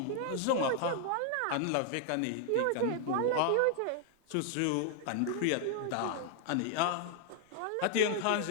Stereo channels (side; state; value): both; different; correlation 0.00